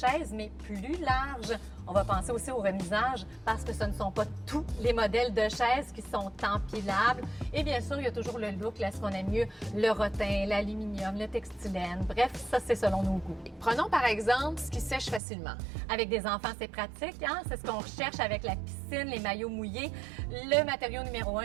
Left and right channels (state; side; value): drops out; left; at 15.2 s